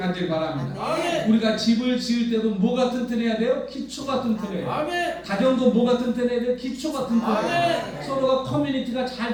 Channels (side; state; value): both; identical; correlation 1.00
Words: 바랍니다. 아멘. 우리가 집을 지을 때도 뭐가 튼튼해야 돼요? 기초가 튼튼해요. 아멘. 가정도 뭐가 튼튼해야 돼요? 기초가 튼튼해요. 아멘. 서로가 커뮤니티가 잘